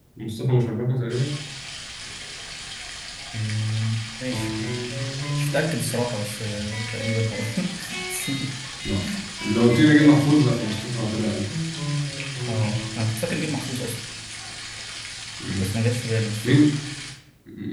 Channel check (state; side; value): identical; both; correlation 1.00